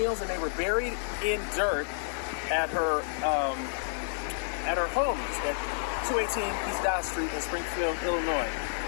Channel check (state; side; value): silent; right; digital silence